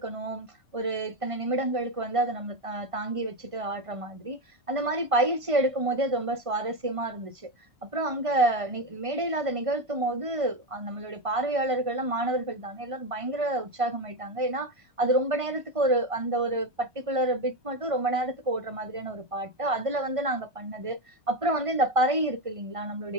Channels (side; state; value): left; late; 1.5 ms